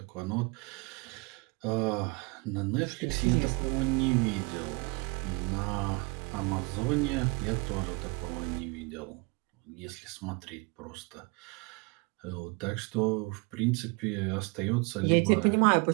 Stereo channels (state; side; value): quieter; left; 28.4 dB